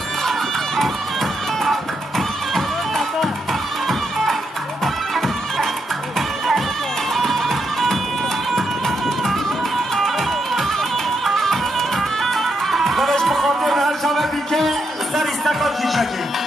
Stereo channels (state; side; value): normal; both; correlation 0.81